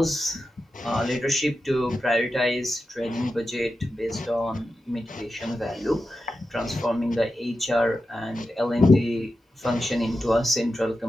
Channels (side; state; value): both; normal; correlation 0.91